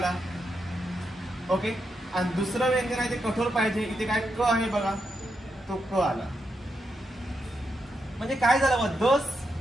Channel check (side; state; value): both; normal; correlation 0.84